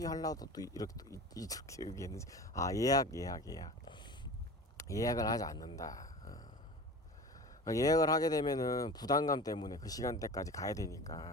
하려고 또 이렇게 얘기했는지 예약을 하지 않는다. 예약을 하게 되면은 부담감 때문에 그 시간대까지 가야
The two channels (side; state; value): both; normal; correlation 0.35